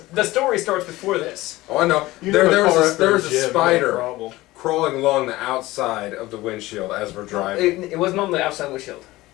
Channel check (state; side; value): quieter; right; 18.5 dB